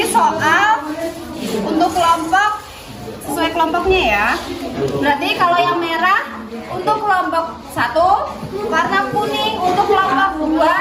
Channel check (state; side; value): identical; both; correlation 1.00